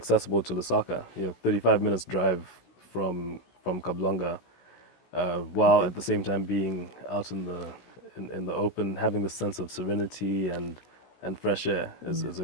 to Lusaka, 35 minutes drive from Kablanga, while at the same time being out in the open, having the sense of serenity and fresh air is a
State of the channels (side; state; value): right; late; 16 ms